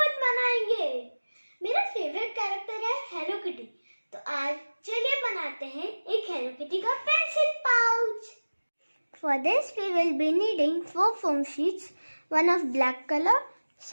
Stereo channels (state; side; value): inverted; both; correlation -1.00